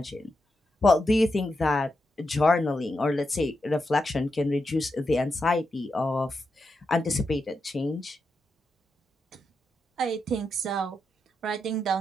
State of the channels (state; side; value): normal; both; correlation 0.86